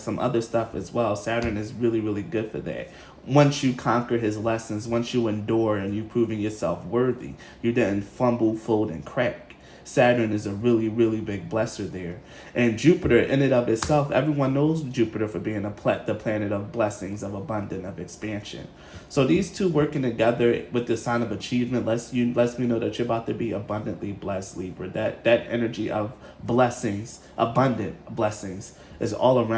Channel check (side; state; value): both; identical; correlation 1.00